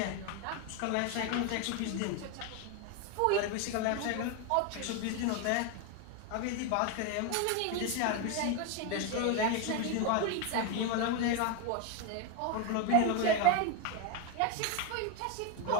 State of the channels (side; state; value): both; different; correlation 0.02